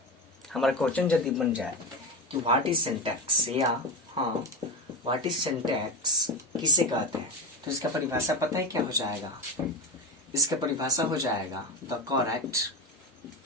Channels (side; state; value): both; normal; correlation 0.18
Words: हमारा क्वेश्चन यदि बन जाए कि व्हाट इज सिंटैक्स, या हाँ व्हाट इज सिंटैक्स किसे कहते हैं, तो इसका परिभाषा पता है क्या हो जाएगा? इसका परिभाषा हो जाएगा the correct